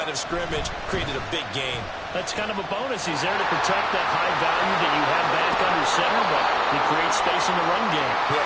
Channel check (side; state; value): both; identical; correlation 1.00